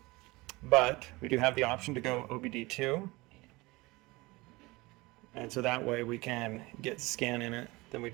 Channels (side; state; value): left; quieter; 22.5 dB